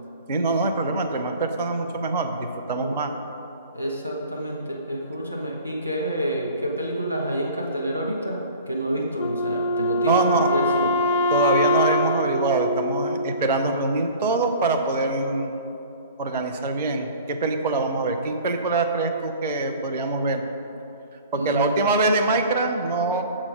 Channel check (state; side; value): inverted; both; correlation -0.43